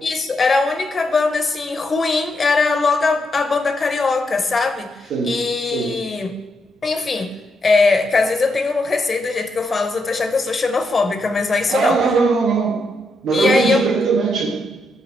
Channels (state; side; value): normal; both; correlation 0.81